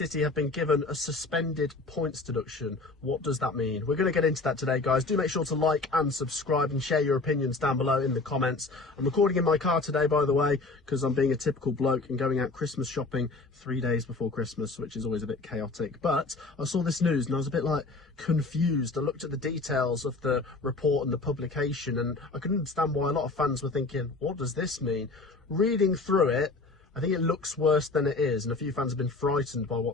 have been given a suspended points deduction. What does that mean? We're going to get into that today, guys. Do make sure to like and subscribe and share your opinions down below in the comments. I'm recording in my car today, by the way, because I'm being a typical bloke and going out Christmas shopping 3 days before Christmas, which is always a bit chaotic. But I saw this news and I was a bit like confused. I looked at the details of the report and the publication and I couldn't understand why a lot of fans were thinking, what does this mean? Reading through it, I think it looks worse than it is, and a few fans have been frightened by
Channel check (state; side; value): quieter; right; 3.5 dB